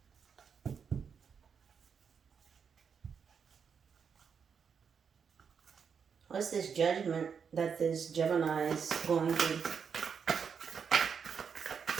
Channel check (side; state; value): left; quieter; 6.6 dB